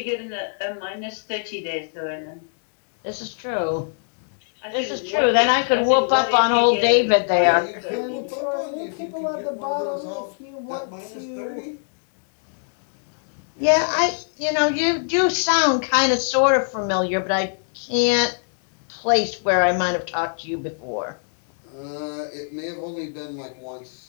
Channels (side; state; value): right; silent; digital silence